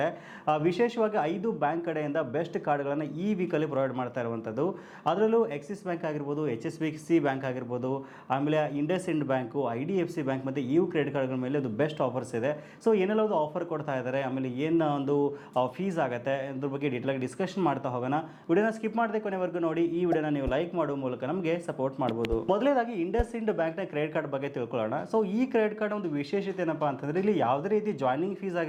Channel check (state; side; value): identical; both; correlation 1.00